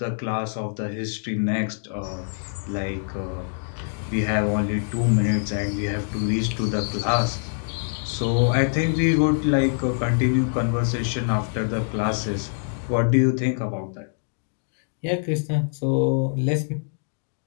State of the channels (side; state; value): right; silent; digital silence